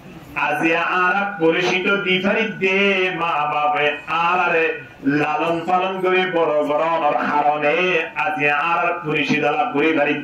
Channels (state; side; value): identical; both; correlation 1.00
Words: আজি আর পরিচিত দিফারি দে মা বাবা আরে লালন পালন করে বড় বড় কারণে আজি আর পরিচিত লাভ করে